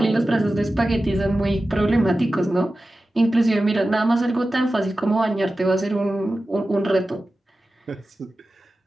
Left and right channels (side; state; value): both; normal; correlation 0.94